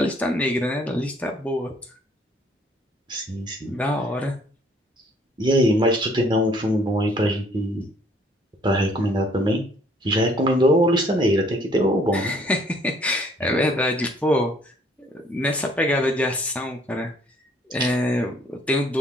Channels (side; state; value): both; normal; correlation 0.61